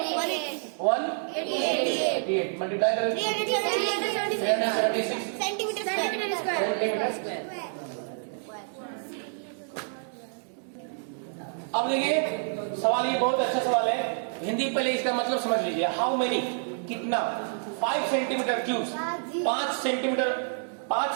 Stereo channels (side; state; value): left; silent; digital silence